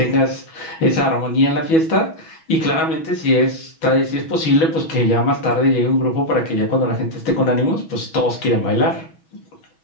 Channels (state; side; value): late; right; 6.2 ms